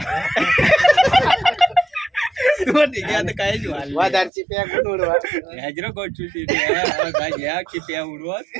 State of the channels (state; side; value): drops out; left; at 4.3 s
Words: तुम्हा ठीक आहे आता काय वादारची प्या कोण उडवा हजरो गोचू घ्या की प्या उडवत